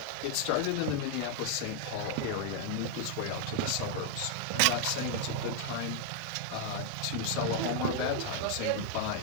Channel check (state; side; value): different; both; correlation 0.00